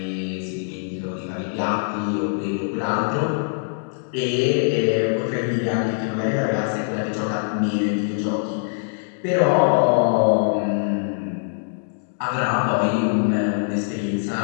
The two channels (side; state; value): right; silent; digital silence